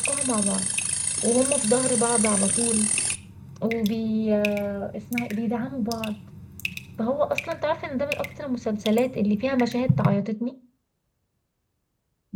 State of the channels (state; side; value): identical; both; correlation 1.00